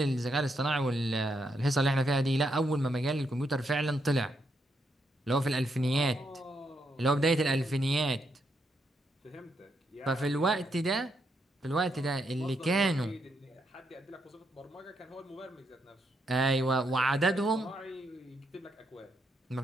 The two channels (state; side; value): normal; both; correlation 0.79